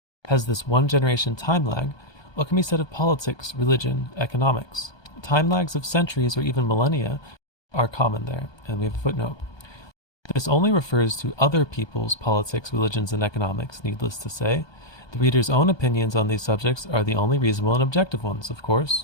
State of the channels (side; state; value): right; late; 1.2 ms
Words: has this one generation time lag, what can be said of politics, religion, economics? Time lags of centuries or even millennia are common there, and we have a footnote. This only refers to other people's politics, religions, and economics, needless to say. The reader's own opinions on these subjects are the only reasonable and objective ones, of